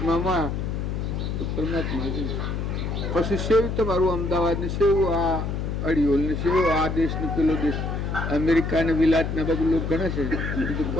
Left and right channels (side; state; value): left; noise; hum, 2 dB below the sound